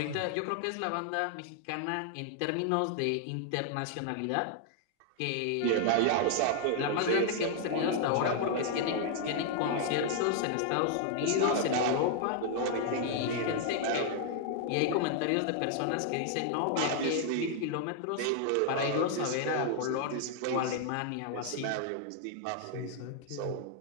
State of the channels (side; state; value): both; different; correlation 0.00